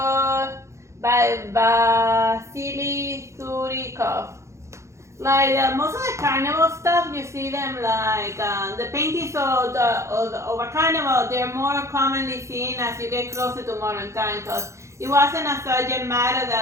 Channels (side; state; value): left; late; 0.14 ms